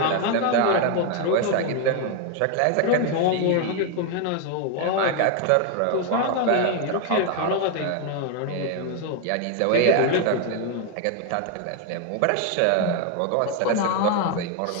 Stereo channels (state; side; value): different; both; correlation 0.01